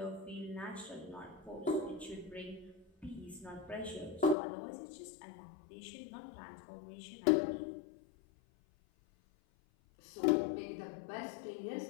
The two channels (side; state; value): right; drops out; at 4.4 s